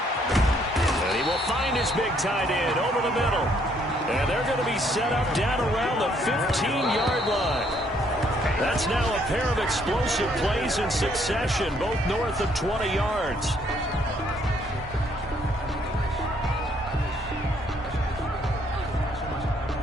And he will find his big tight end over the middle. And they're going to be set up down around the 15-yard line. That's now a pair of explosive plays in succession, both north of 20 yards.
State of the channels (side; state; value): both; normal; correlation 0.67